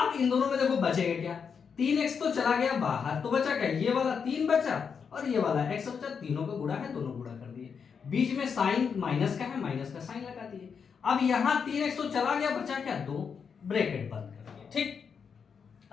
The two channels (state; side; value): quieter; right; 6.4 dB